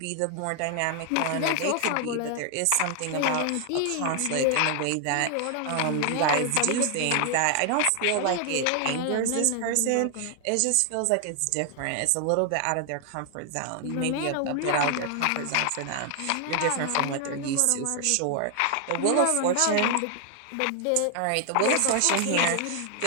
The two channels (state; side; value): different; both; correlation 0.00